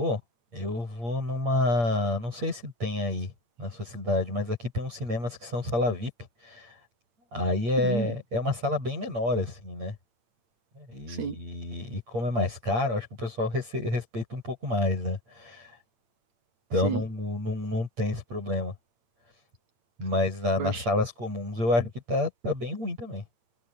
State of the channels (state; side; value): late; left; 8.5 ms